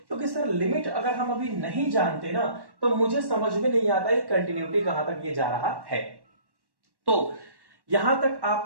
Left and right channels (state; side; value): late; left; 1.1 ms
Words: सर लिमिट अगर हम अभी नहीं जानते ना, तो मुझे समझ में नहीं आता है कंटिन्यूटी कहां तक ये जा रहा है। तो यहां तक